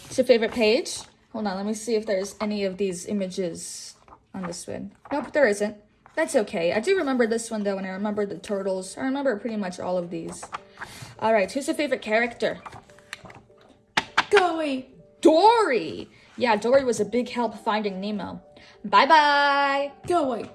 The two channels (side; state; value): both; identical; correlation 1.00